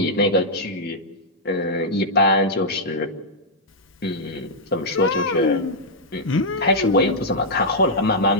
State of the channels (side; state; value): both; normal; correlation -0.07